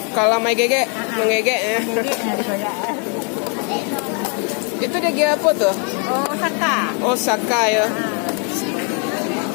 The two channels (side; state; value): right; quieter; 38.3 dB